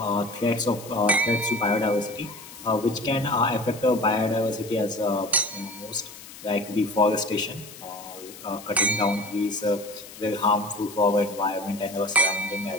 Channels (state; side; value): noise; left; hiss, 16 dB below the sound